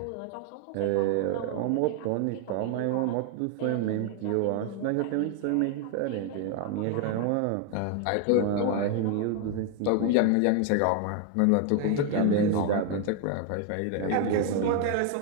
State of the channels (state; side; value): different; both; correlation 0.01